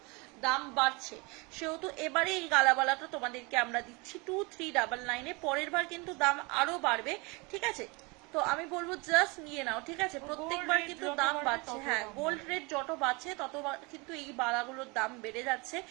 দাম বাড়ছে, সেহেতু এবারে এই গালাবালাটা তোমাদেরকে আমরা দিচ্ছি 2399-এ। পরের বার কিন্তু দাম আরো বাড়বে, ঠিক আছে। তো আমি বলবো জাস্ট নিয়ে নাও, ঠিক আছে। প্রত্যেকবার কিন্তু দাম বাড়ছে, হ্যাঁ গোল্ড রেট যত বাড়ছে তত কিন্তু এই বালাগুলোর দাম বেড়ে যাচ্ছে,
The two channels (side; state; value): left; quieter; 27.8 dB